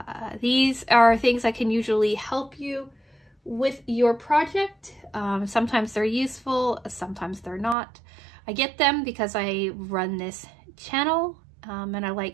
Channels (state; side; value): drops out; left; at 7.8 s